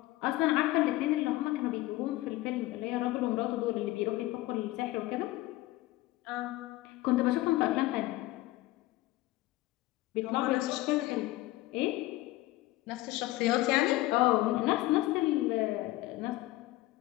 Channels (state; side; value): quieter; right; 17.9 dB